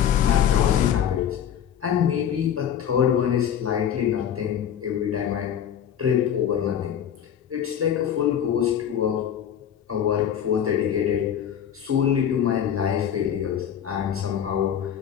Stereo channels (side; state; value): right; quieter; 9.2 dB